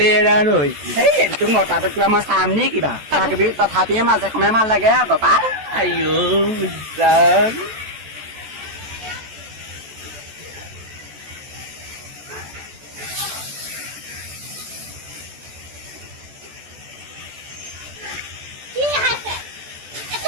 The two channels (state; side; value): late; left; 14 ms